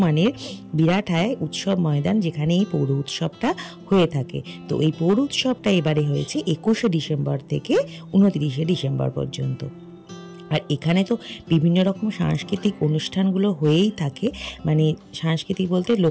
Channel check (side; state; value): both; identical; correlation 1.00